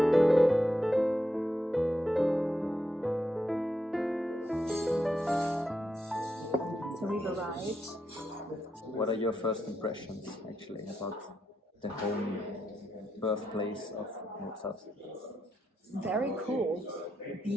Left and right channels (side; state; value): both; normal; correlation 0.83